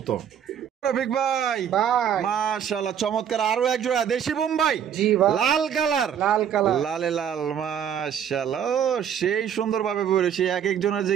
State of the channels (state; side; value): quieter; left; 8.7 dB